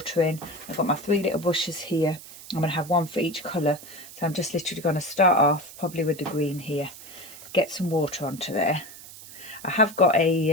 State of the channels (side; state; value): right; noise; hiss, 16 dB below the sound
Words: in. I've got my 3 little bushes here. I'm going to have one for each colour. So I'm just literally going to start off probably with the green here. Get some water onto there. I have got